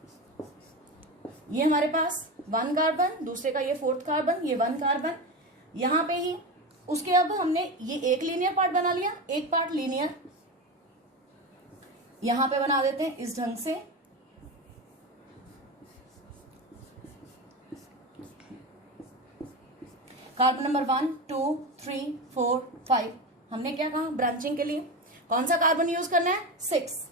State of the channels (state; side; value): normal; both; correlation 0.21